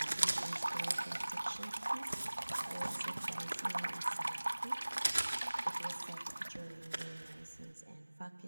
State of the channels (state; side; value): inverted; both; correlation -1.00